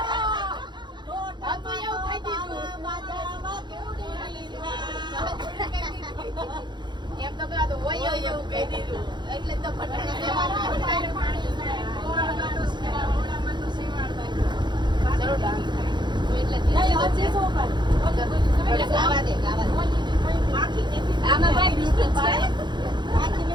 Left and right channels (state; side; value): late; left; 0.22 ms